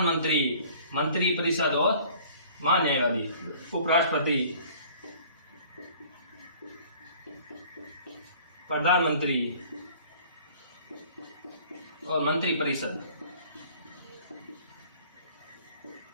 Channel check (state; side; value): inverted; both; correlation -0.51